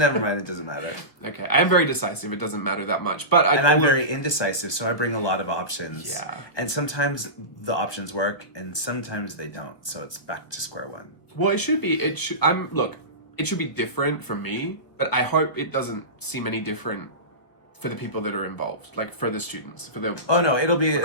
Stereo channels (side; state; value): right; late; 1.4 ms